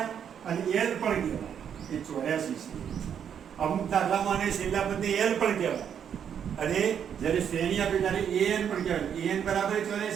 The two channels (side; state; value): left; quieter; 8.3 dB